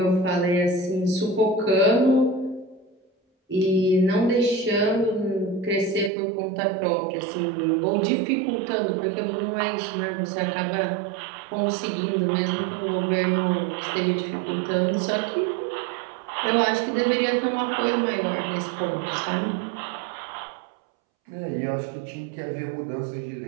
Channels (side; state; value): left; drops out; at 6.1 s